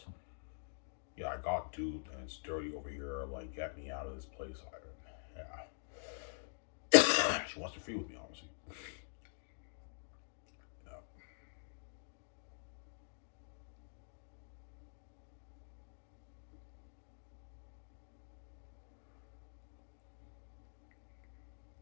Yeah, I got duped and it's dirty over here. Like, get me out of this place, Ivan. Yeah. She wants to free with me, obviously.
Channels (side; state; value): right; silent; digital silence